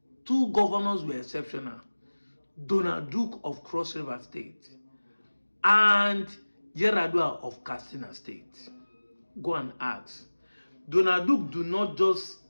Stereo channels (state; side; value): inverted; both; correlation -1.00